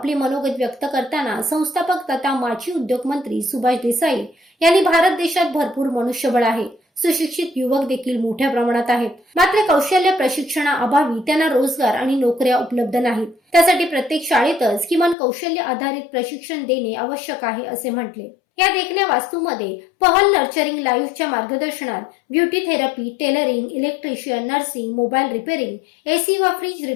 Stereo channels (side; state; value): right; drops out; at 15.2 s